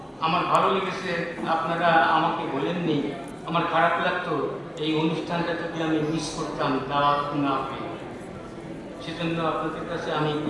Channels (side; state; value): both; identical; correlation 1.00